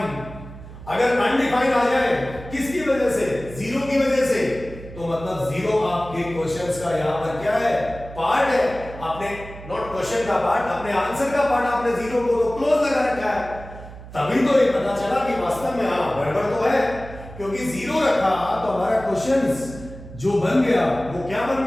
अगर अनडिफाइंड आ जाए किसकी वजह से, 0 की वजह से, तो मतलब 0 आपके क्वेश्चंस का यहां पर क्या है, पार्ट है। आपने नॉट क्वेश्चन का पार्ट, अपने आंसर का पार्ट आपने 0 को तो क्लोज लगा रखा है। तभी तो ये पता चला कि वास्तव में हां गड़बड़ तो है, क्योंकि 0 रखा तो हमारा क्वेश्चंस जो बन गया वो क्या बन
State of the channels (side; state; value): right; noise; hum, 15 dB below the sound